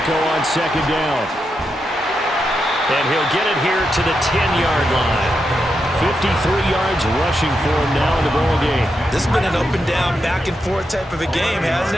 on 2nd down. And he'll get it here to the 10-yard line. 53 yards rushing for him now in the ball game. This has been an up and down, back and forth type of a game, hasn't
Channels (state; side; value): normal; both; correlation 0.85